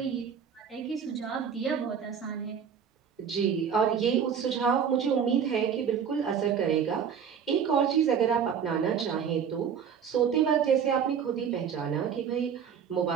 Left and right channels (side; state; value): left; quieter; 7.5 dB